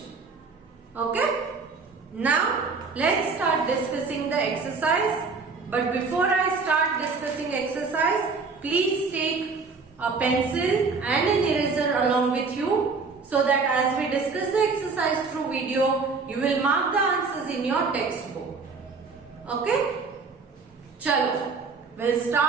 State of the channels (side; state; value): left; quieter; 4.6 dB